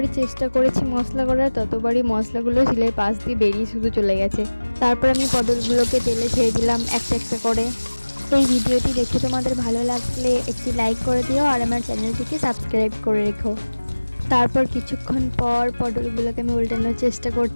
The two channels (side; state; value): both; inverted; correlation -1.00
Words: চেষ্টা করেছি মশলা করার, ততবারই মশলাগুলো শিলের পাশ দিয়ে বেরিয়ে শুধু চলে গেছে। তারপর আমি পটলগুলোকে তেলে ছেড়ে দিলাম একটা একটা করে। এই ভিডিওটি দেখে তোমাদের ভালো লাগলে একটি লাইক করে দিও আর আমার চ্যানেলটিকে সাবস্ক্রাইব করে রেখো। তারপর কিছুক্ষণ পর পটলগুলোকে আমি উল্টানোর চেষ্টা